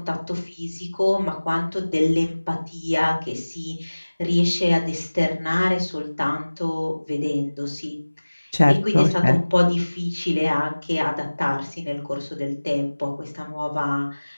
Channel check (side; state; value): both; inverted; correlation -1.00